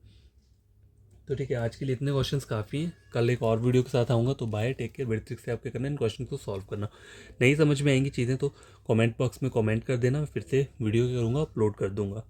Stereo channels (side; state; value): both; identical; correlation 1.00